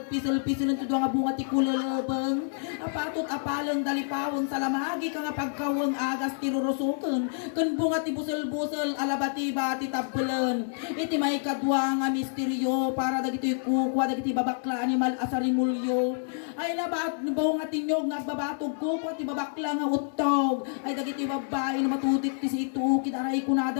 pisel-pisel tidwa nga bunga ti kulala. Apatot apalang dalipawon sa lamagi ka nga pagkawang agas tirurusukan kan bunga ti busel-busel alabati-bati tabbelan iti may kadwa nga misteryo para dagiti kukwa dagiti babakla animal asarimulyo Ay labat buong atinyog nagbabatog ko pati babakla nga utog. Ay dagiti babae na matutik ti si itu kidaray kunada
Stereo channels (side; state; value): right; silent; digital silence